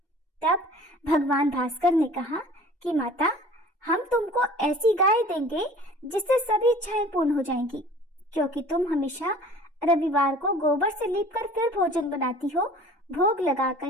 तब भगवान भास्कर ने कहा कि माता, हम तुमको ऐसी गाय देंगे जिससे सभी इच्छाएं पूर्ण हो जाएंगी, क्योंकि तुम हमेशा रविवार को गोबर से लीपकर फिर भोजन बनाती हो, भोग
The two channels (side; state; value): both; normal; correlation 0.46